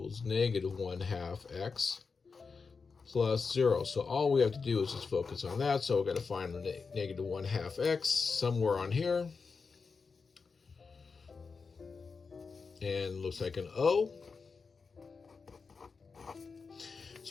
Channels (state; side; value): quieter; right; 4.9 dB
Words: negative 1/2 x plus 0. So all we have to do is just focus on that. So we've got to find the negative 1/2 x somewhere on here. And looks like an O.